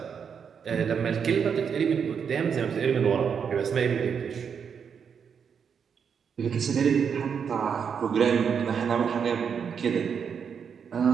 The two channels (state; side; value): quieter; left; 6.9 dB